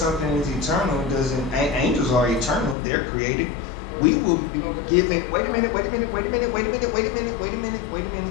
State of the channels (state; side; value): drops out; right; at 2.8 s